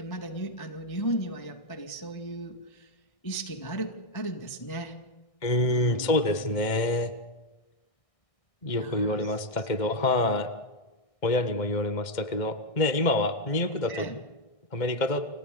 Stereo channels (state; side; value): late; right; 1.6 ms